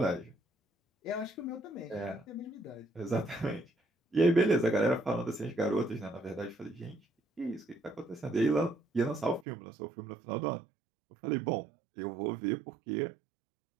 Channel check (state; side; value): drops out; left; at 9.5 s